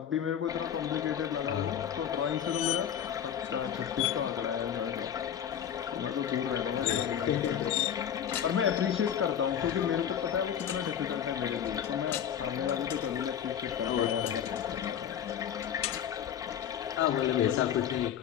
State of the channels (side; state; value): right; quieter; 9.2 dB